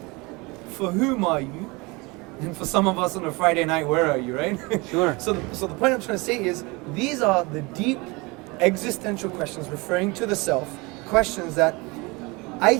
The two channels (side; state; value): left; quieter; 25.8 dB